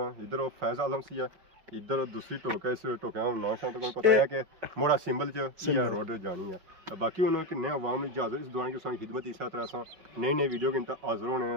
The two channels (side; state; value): left; late; 5.3 ms